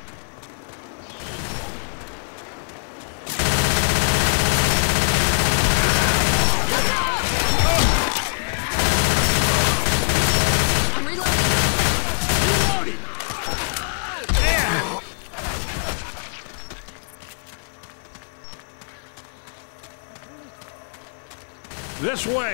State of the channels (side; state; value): right; silent; 64 dB below the other